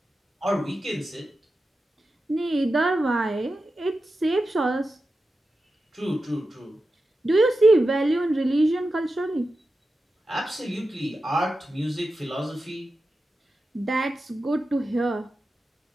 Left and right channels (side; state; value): both; normal; correlation 0.91